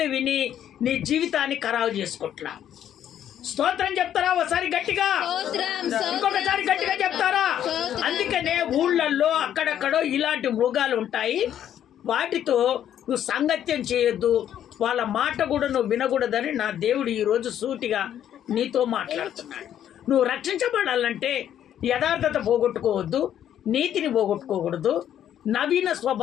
విని నీ జీవితాన్ని ఖరాబు చేసుకుంటున్నావు. స్తోత్రం చెప్తారా ఒకసారి గట్టిగా? ఇంకొకసారి గట్టిగా చెప్తారా? అందుకనే ఊళ్ళల్లో అక్కడక్కడో ఇలాంటి మృగాలు ఉంటాయి. వాటితో నువ్వు సంగత్యం చేయొద్దు, వాళ్ళ మాట కూడా నువ్వు వినకూడదని నా దేవుడు ఈరోజు సూటిగా నీతో మాట్లాడుతున్నాడు. నువ్వు రక్షించబడాలంటే యథార్థత పోగొట్టుకోవద్దు, నీతిని పోగొట్టుకోకూడదు, నవీన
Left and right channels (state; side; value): quieter; right; 10.4 dB